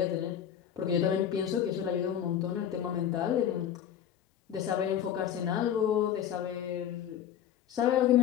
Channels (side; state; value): right; quieter; 9.7 dB